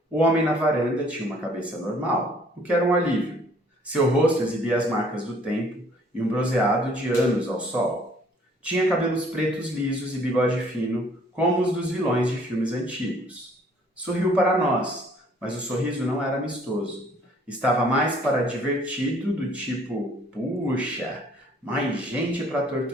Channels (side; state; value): both; normal; correlation 0.59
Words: O homem na varanda tinha uma cabeça normal, o que era um alívio. Seu rosto exibia as marcas do tempo e um bronzeado de anos ao sol. Tinha cabelos pretos lisos e bigode fino, como os dos vilões de filmes antigos. Sorriu para nós, mas o sorriso não era amistoso. Estava mais para divertido, do tipo, puxa, mais gente para